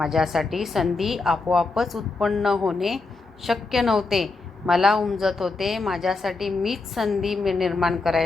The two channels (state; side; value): quieter; right; 3.7 dB